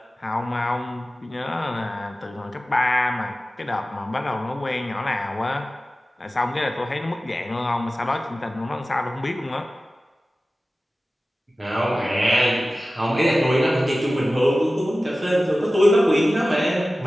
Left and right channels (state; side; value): normal; both; correlation 0.96